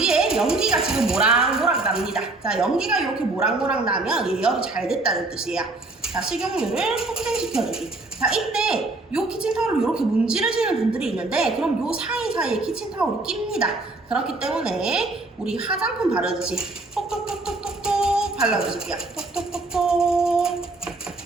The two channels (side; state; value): left; quieter; 3.2 dB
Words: 연기가 지금 모락모락 납니다. 자, 연기가 이렇게 모락모락 나면 예열이 잘 됐다는 뜻이에요. 자, 식용유를 폭행시켜주기. 자, 이때 요 키친타올을 이렇게 문지르시는 분들이 있는데 그럼 요 사이사이에 키친타올이 낍니다. 그렇기 때문에 우리 화장품 바르듯이 톡톡톡톡톡톡 발라주실게요. 톡톡톡톡.